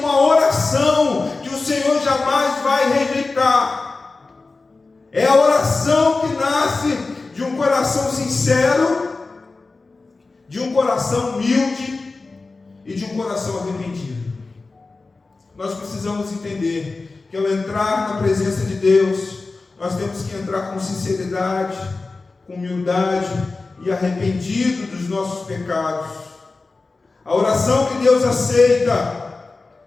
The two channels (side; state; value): right; quieter; 3.7 dB